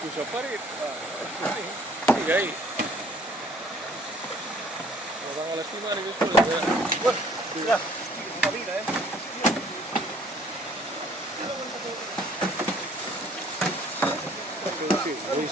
cominciò a apparire. Sigue ahí. Nos van a lastimar y después. Bueno, ya, una vida, Sí, hoy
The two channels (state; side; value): normal; both; correlation 0.58